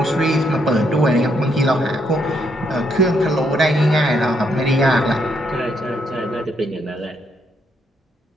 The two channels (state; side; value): normal; both; correlation 0.75